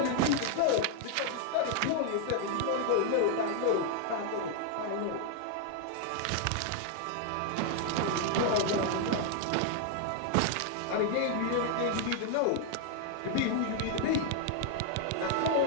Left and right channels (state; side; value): different; both; correlation 0.00